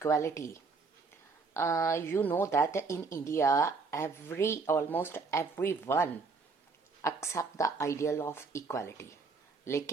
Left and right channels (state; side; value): quieter; left; 4.5 dB